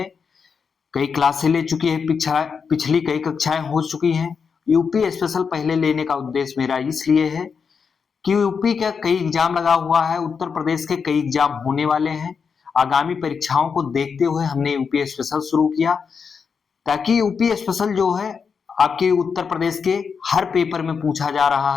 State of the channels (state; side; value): quieter; right; 5.9 dB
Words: कई क्लासें ले चुकी है, पिछली कई कक्षाएं हो चुकी हैं। यूपी स्पेशल पहले लेने का उद्देश्य मेरा इसलिए है कि यूपी का कई एग्जाम लगा हुआ है, उत्तर प्रदेश के कई एग्जाम होने वाले हैं। आगामी परीक्षाओं को देखते हुए हमने यूपी स्पेशल शुरू किया, ताकि यूपी स्पेशल जो है आपके उत्तर प्रदेश के हर पेपर में पूछा जा रहा